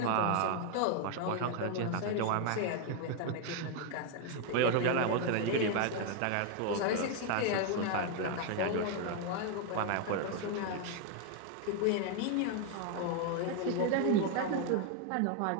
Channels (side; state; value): both; different; correlation 0.01